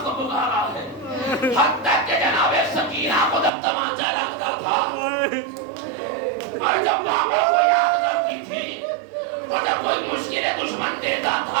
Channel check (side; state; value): left; drops out; at 3.5 s